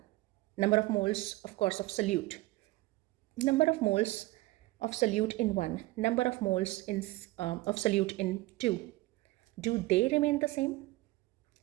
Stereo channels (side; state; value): left; quieter; 19.4 dB